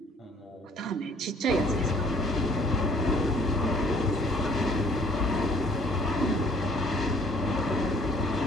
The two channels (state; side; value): normal; both; correlation 0.59